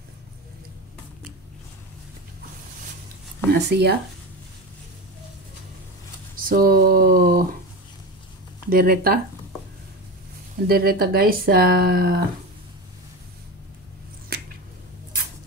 Na siya. So Dereta guys, sa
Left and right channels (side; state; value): both; normal; correlation 0.23